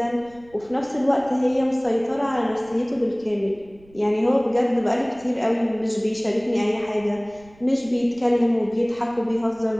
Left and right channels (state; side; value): noise; right; rumble, 26 dB below the sound